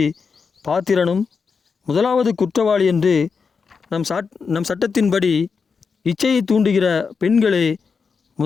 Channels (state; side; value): quieter; right; 5.4 dB